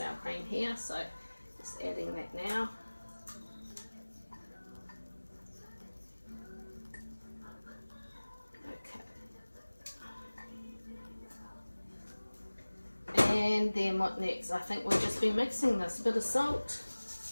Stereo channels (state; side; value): inverted; both; correlation -1.00